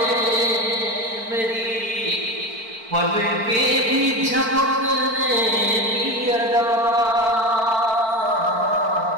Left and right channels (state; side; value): late; left; 4.5 ms